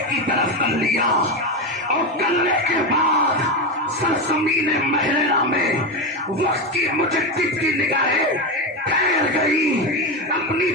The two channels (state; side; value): normal; both; correlation 0.15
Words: کی طرف کر لیا، اور کرنے کے بعد سرزمین محررہ میں وقت کی مجدد کی نگاہیں ٹھہر گئی، اپنی